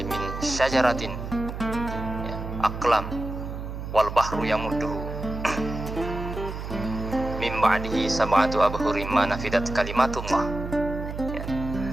min syajaratin, ya, aqlam wal bahru yamudduhu min ba'dihi sab'atu abhurin ma nafidat kalimatullah. Ya.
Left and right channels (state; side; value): noise; right; hum, 7 dB below the sound